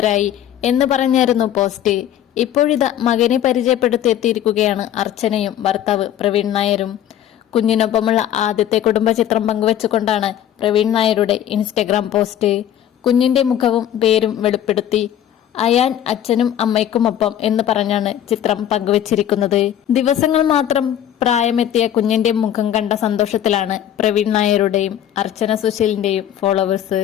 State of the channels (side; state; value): right; quieter; 10.8 dB